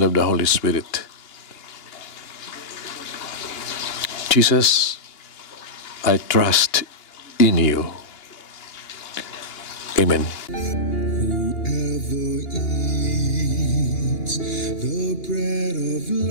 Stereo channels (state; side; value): late; right; 2.8 ms